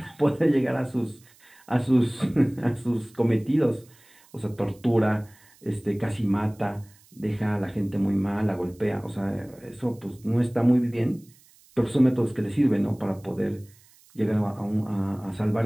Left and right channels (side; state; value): right; noise; hiss, 28 dB below the sound